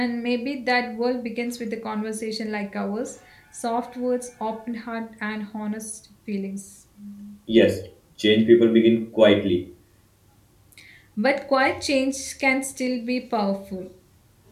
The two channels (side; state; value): both; identical; correlation 1.00